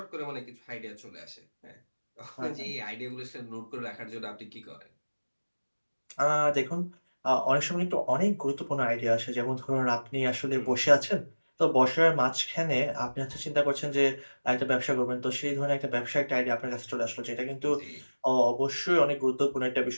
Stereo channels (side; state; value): both; inverted; correlation -1.00